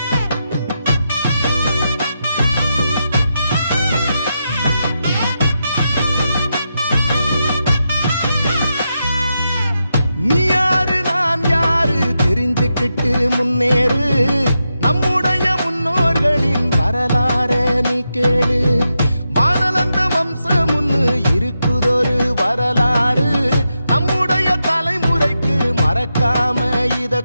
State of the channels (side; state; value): both; inverted; correlation -0.86